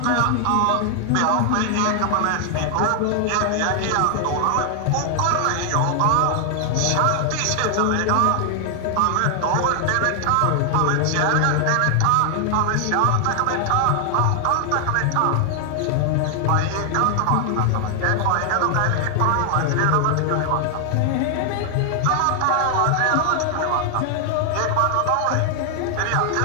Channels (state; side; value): different; both; correlation 0.00